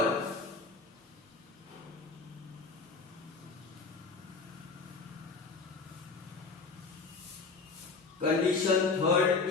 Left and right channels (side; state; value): right; quieter; 4.3 dB